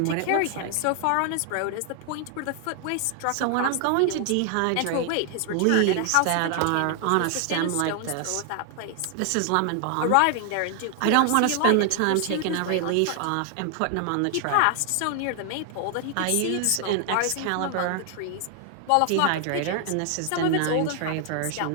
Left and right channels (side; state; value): both; different; correlation 0.00